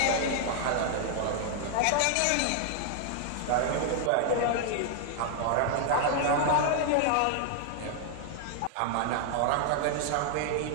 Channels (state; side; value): different; both; correlation 0.00